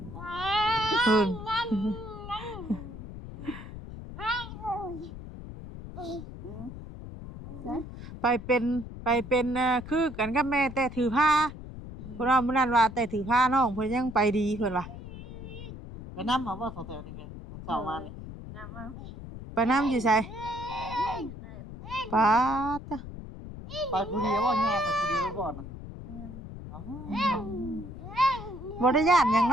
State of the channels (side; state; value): left; noise; rumble, 12 dB below the sound